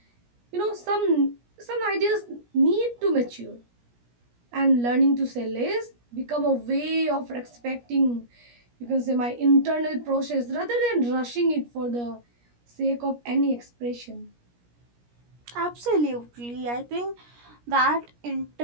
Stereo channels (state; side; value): late; left; 17 ms